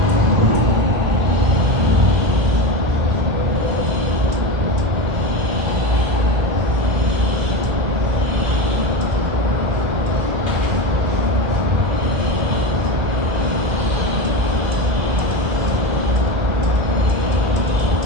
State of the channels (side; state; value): left; late; 2.3 ms